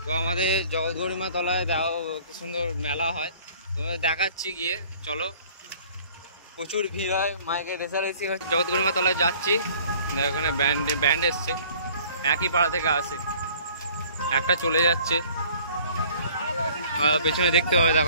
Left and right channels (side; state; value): both; inverted; correlation -0.53